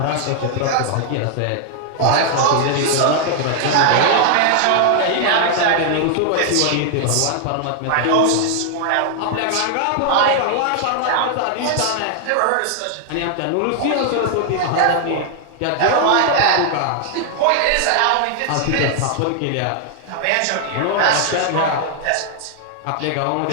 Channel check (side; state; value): both; different; correlation 0.00